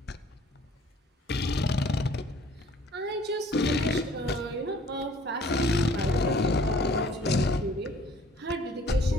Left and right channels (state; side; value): normal; both; correlation 0.55